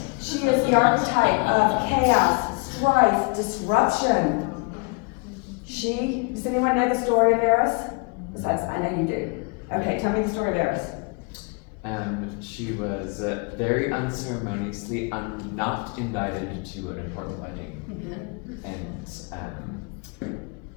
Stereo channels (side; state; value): right; quieter; 31.9 dB